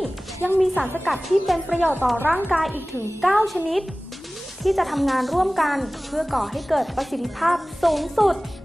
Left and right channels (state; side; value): normal; both; correlation 0.98